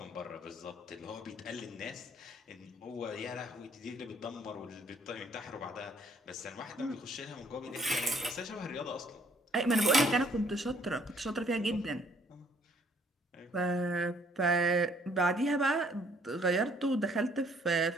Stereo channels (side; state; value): both; normal; correlation 0.63